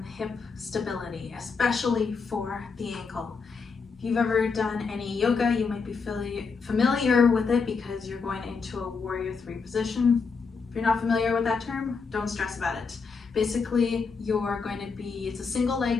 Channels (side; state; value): right; quieter; 5.0 dB